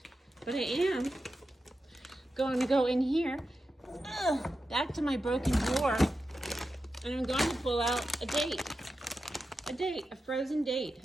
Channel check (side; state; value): both; normal; correlation 0.90